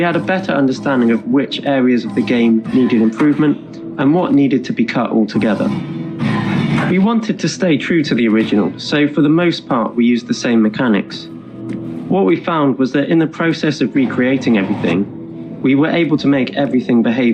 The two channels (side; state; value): both; identical; correlation 1.00